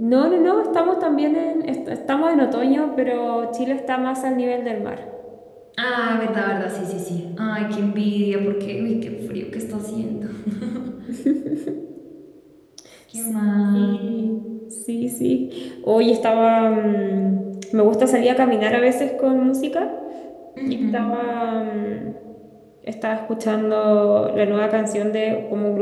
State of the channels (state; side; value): identical; both; correlation 1.00